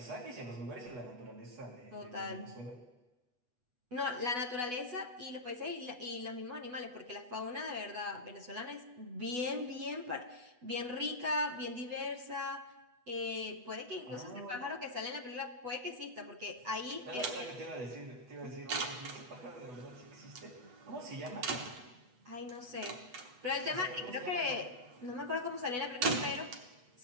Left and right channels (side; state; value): left; late; 8.1 ms